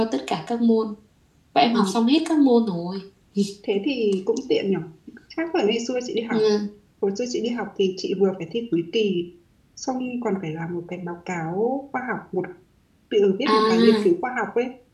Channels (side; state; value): both; identical; correlation 1.00